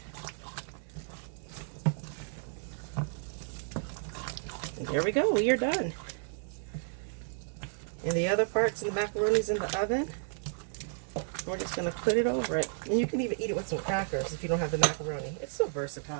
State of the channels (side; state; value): left; silent; digital silence